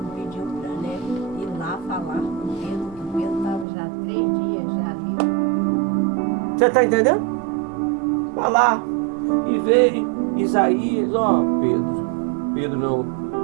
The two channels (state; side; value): drops out; left; at 3.7 s